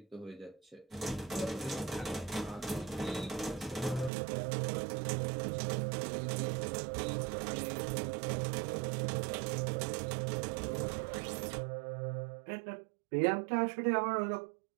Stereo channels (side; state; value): left; drops out; at 4.1 s